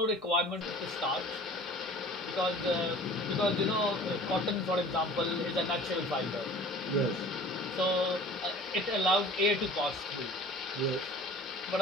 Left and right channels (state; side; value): normal; both; correlation 0.45